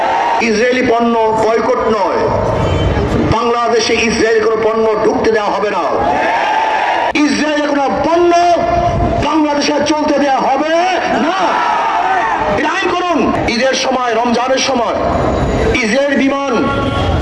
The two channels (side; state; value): both; identical; correlation 1.00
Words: ইসরায়েলি পণ্য বয়কট নয়, বাংলাদেশে ইসরায়েলি কোনো পণ্য ঢুকতে দেওয়া হবে না। ইসরায়েলের কোনো পণ্য বাংলাদেশে চলতে দেওয়া হবে না। আইন করুন। ঈদের সময়, রমজানের সময় ইসরায়েল বিমান